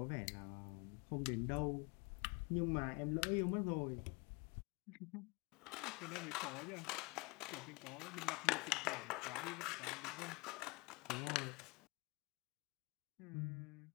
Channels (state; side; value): quieter; right; 27.1 dB